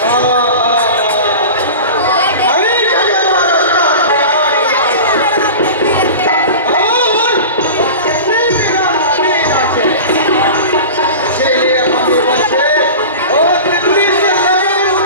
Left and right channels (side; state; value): both; inverted; correlation -0.33